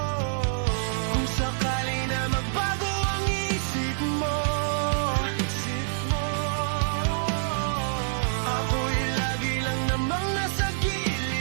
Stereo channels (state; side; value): silent; left; 60 dB below the other